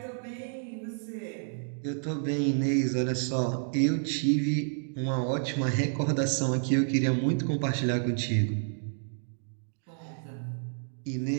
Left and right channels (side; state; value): left; silent; digital silence